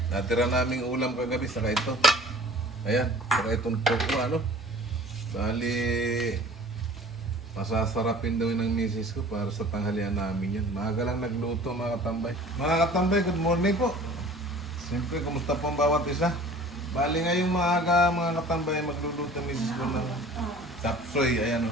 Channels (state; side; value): normal; both; correlation 0.46